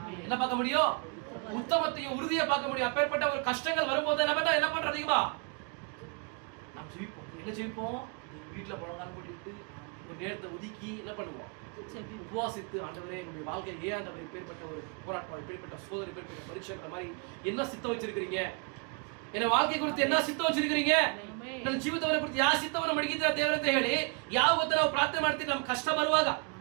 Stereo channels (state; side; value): quieter; left; 35.2 dB